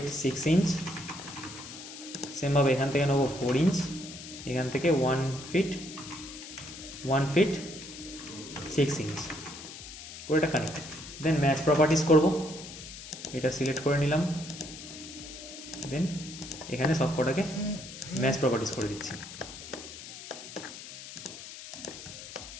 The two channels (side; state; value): left; noise; hiss, 13 dB below the sound